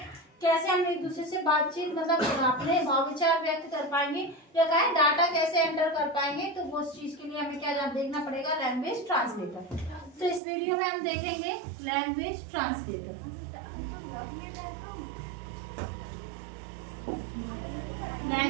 कैसे हम एक दूसरे से बातचीत मतलब अपने भाव विचार व्यक्त कर पाएंगे, या कहें डाटा कैसे एंटर कर पाएंगे, तो वो चीज के लिए हमें क्या देखना पड़ेगा, लैंग्वेज ट्रांसलेटर। तो इस वीडियो में हम देखेंगे लैंग्वेज ट्रांसलेटर।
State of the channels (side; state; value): left; drops out; at 10.4 s